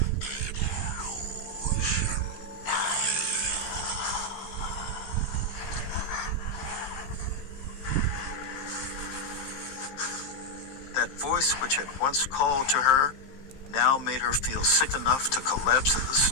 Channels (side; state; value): right; late; 16 ms